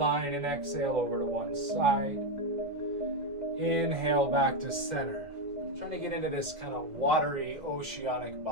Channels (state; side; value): late; left; 1.8 ms